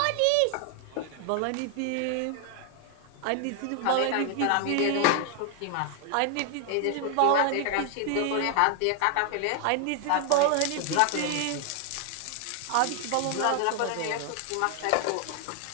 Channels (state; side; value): different; both; correlation 0.00